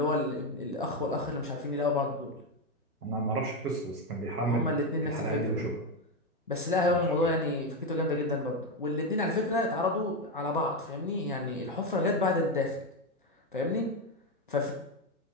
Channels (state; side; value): normal; both; correlation 0.09